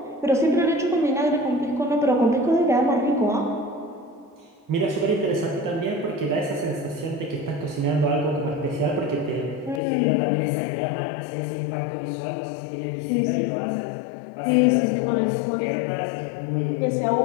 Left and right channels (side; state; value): right; drops out; at 9.8 s